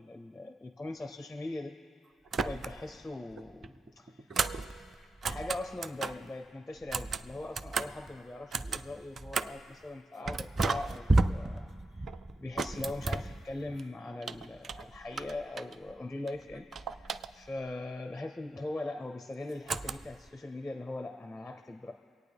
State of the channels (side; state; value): both; normal; correlation 0.89